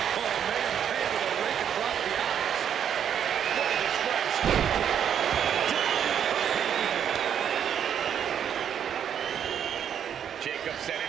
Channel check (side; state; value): left; quieter; 8.8 dB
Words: Oh, made him pay with a rake across the eyes. What a disgrace. Jacob